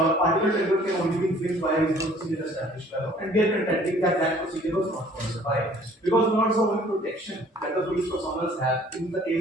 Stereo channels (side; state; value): both; normal; correlation 0.55